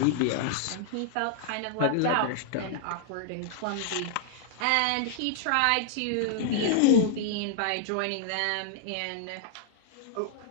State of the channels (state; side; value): different; both; correlation -0.01